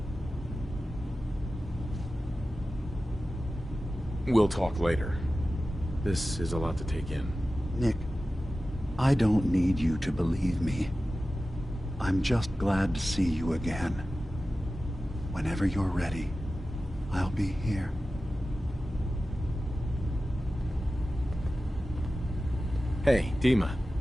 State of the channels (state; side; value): normal; both; correlation 0.94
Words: We'll talk later. This is a lot to take in. Nick, I don't need you to believe me. I'm just glad to see you again. Whenever you're ready, I'll be here. Hey, Dima.